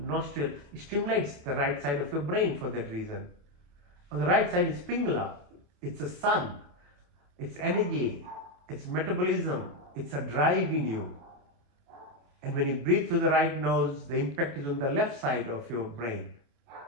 stimulates the right side of your brain for that reason. On the right side is Pingala. It's a sun. It's energy. It's metabolism. It's a drive in you. And when you breathe through the right nose, the impact is on the left side of your brain,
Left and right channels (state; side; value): late; left; 28 ms